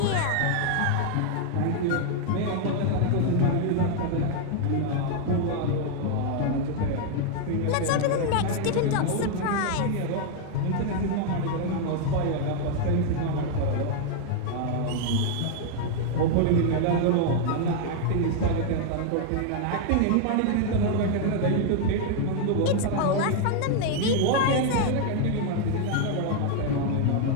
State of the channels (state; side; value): different; both; correlation 0.00